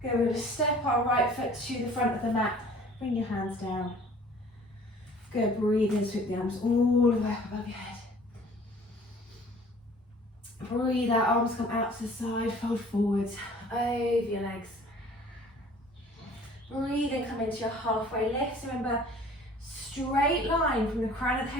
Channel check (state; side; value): normal; both; correlation 0.50